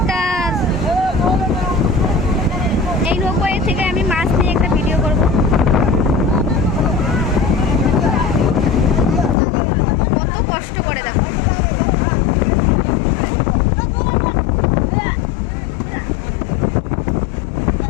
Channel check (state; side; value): drops out; right; at 9.3 s